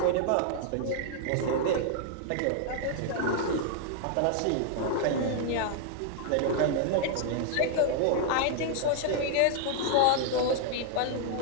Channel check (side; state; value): both; different; correlation 0.00